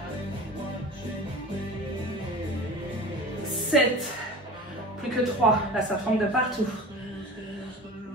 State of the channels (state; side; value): normal; both; correlation 0.37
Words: 7. Plus que 3. Là, ça tremble de partout.